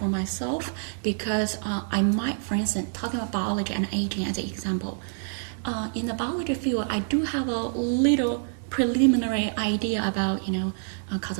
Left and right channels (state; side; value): silent; left; digital silence